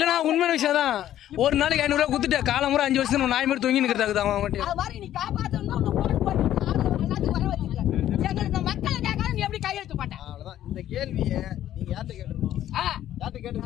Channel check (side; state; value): right; quieter; 12.1 dB